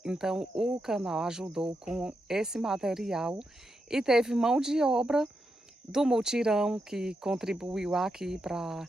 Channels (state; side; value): normal; both; correlation 0.85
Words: Então, o canal ajudou com esse material e teve mão de obra do mutirão que contribuiu aqui para